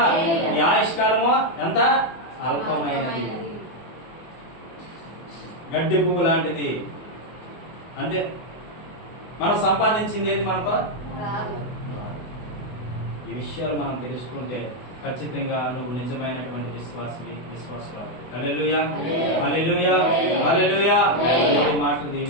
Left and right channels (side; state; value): right; late; 24 ms